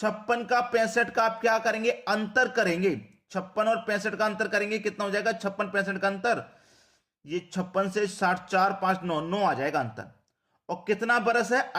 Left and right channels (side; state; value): both; identical; correlation 1.00